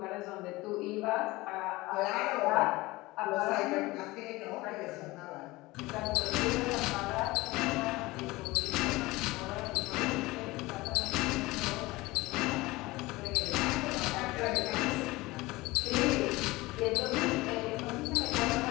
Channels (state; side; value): quieter; right; 20.7 dB